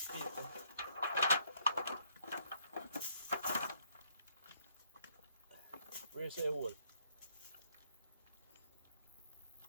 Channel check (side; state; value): both; inverted; correlation -0.67